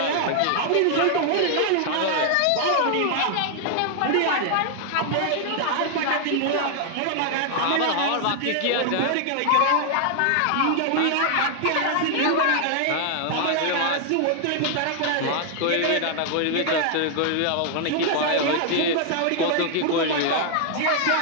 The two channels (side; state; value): both; different; correlation 0.00